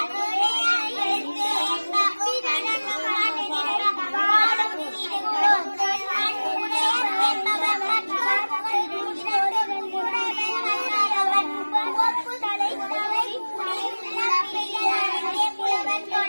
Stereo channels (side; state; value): both; inverted; correlation -1.00